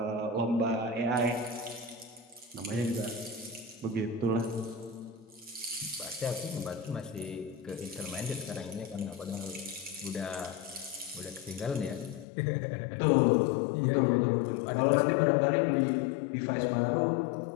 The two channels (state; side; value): drops out; right; at 12.2 s